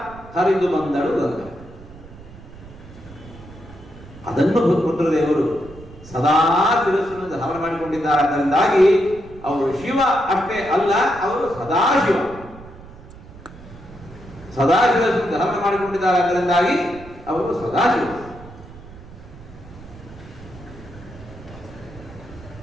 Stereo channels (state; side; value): noise; right; rumble, 18 dB below the sound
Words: ಹರಿದು ಬಂದಳು ಗಂಗಾ. ಅದನ್ನು ರುದ್ರದೇವರು ಸದಾ ಶಿರಸ್ಸನ್ನು ಧಾರಣ ಮಾಡಿಕೊಂಡಿದ್ದಾರೆ. ಅದರಿಂದಾಗಿ ಅವರು ಶಿವ ಅಷ್ಟೇ ಅಲ್ಲ, ಅವರು ಸದಾಶಿವ. ಸದಾಶಿವವನ್ನು ಧಾರಣ ಮಾಡಿಕೊಂಡಿದ್ದಾರೆ. ಅದರಿಂದಾಗಿ ಅವರು ಸದಾಶಿವ.